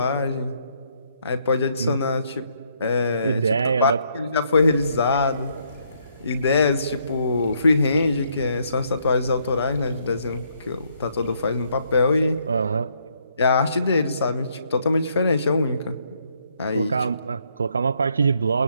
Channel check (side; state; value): both; inverted; correlation -0.71